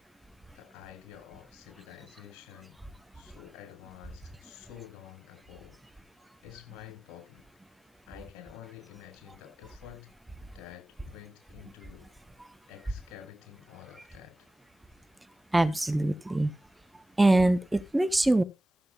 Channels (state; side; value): normal; both; correlation 0.97